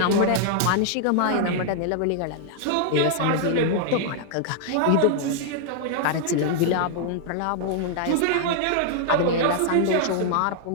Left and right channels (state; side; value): different; both; correlation -0.01